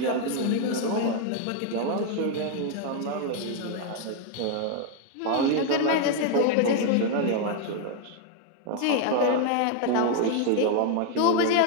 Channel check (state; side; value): different; both; correlation 0.01